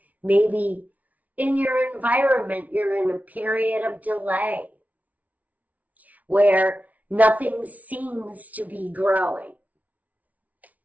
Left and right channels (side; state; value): left; late; 0.071 ms